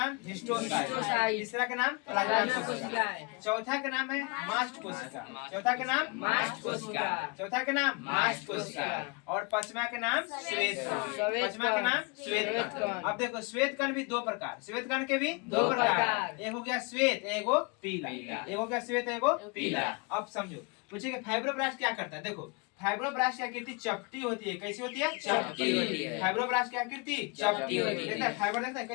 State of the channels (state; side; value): quieter; right; 30.6 dB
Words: हिस्टोसाइट, तीसरा का नाम प्लाज्मा कोशिकाएं। चौथा का नाम है मास्ट कोशिका, चौथा का नाम मास्ट कोशिका, चौथा का नाम मास्ट कोशिका। और पांचवा का नाम श्वेत कण, पांचवा का नाम श्वेत कण। अब देखो श्वेत कण भी 2 प्रकार, श्वेत कण के भी 2 प्रकार, एक हो गया श्वेत, एक हो पीला, एक हो गया श्वेत, एक हो पीला। अब समझो, पूछे कि फाइब्रोब्लास्ट क्या करता है। देखो फाइब्रोब्लास्ट की आकृति चपटी होती है, कैसी होती है, चपटी होती है। फाइब्रोब्लास्ट की आकृति चपटी होती है। फाइबर देखता है